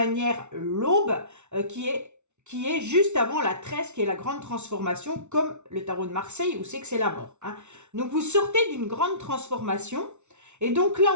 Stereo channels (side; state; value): left; late; 0.82 ms